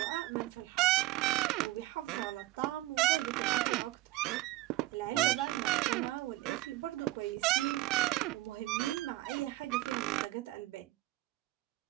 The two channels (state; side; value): quieter; left; 18.2 dB